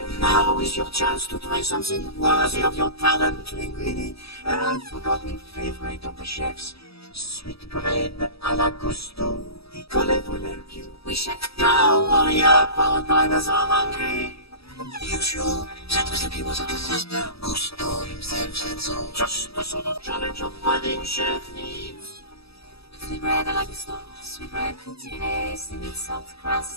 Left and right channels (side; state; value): right; late; 0.77 ms